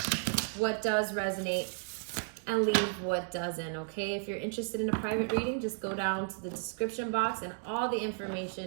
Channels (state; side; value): silent; left; digital silence